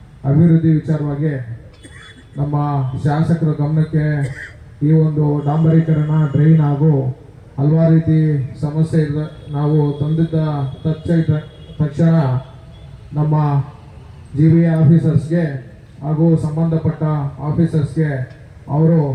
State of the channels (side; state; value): both; identical; correlation 1.00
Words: ಅಭಿವೃದ್ಧಿ ವಿಚಾರವಾಗಿ ನಮ್ಮ ಶಾಸಕರ ಗಮನಕ್ಕೆ ಈ ಒಂದು ಡಾಂಬರೀಕರಣ, ಡ್ರೈನ್ ಹಾಗೂ ಹಲವಾರು ರೀತಿ ಸಮಸ್ಯೆ ಇದೆ. ನಾವು ತಂದಿದ್ದ ತಕ್ಷಣ ನಮ್ಮ GBA ಆಫೀಸರ್ಸ್ಗೆ ಹಾಗೂ ಸಂಬಂಧಪಟ್ಟ ಆಫೀಸರ್ಸ್ಗೆ ಅವರು